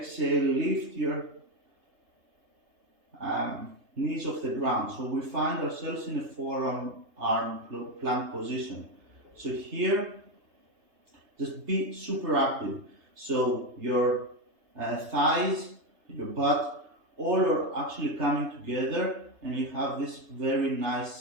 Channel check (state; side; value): late; left; 3.3 ms